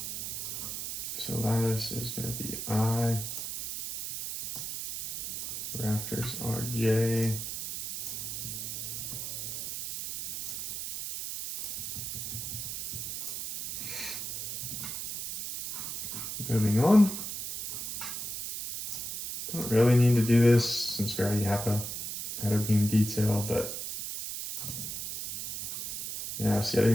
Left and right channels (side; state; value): right; noise; hiss, 5 dB below the sound